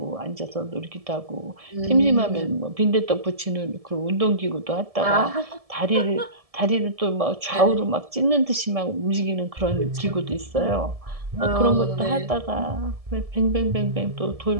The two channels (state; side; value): late; left; 1.7 ms